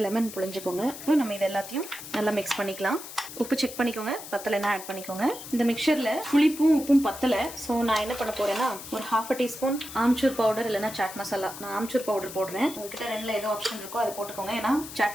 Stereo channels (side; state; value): left; noise; hiss, 12 dB below the sound